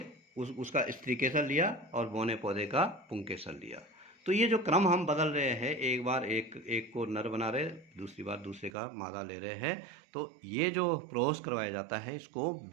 उसका स्त्री केसर लिया और बौने पौधे का पुंकेसर लिया। तो ये जो क्रम हम बदल रहे हैं, एक बार एक को नर बना रहे, दूसरी बार दूसरे का मादा ले रहे हैं, तो ये जो क्रॉस करवाया जाता है इसको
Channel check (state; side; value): drops out; left; at 8.7 s